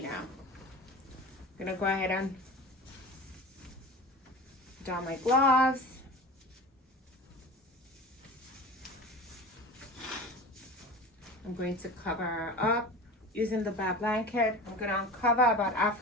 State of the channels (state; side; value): normal; both; correlation 0.34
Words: know. I'm gonna go ahead and don my gloves. I'm going to cover her up using the bath blanket. I'm going to uncover about